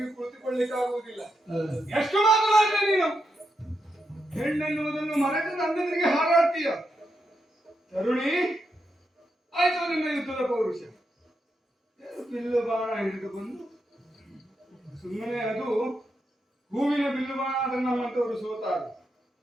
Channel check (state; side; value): normal; both; correlation 0.84